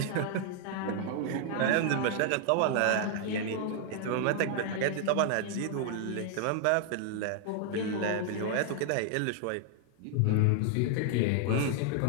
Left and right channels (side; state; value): both; different; correlation 0.00